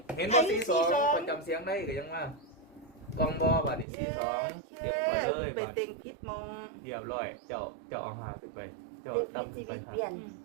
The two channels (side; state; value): left; drops out; at 3.9 s